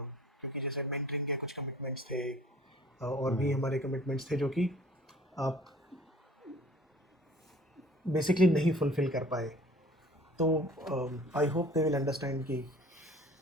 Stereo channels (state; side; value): normal; both; correlation 0.49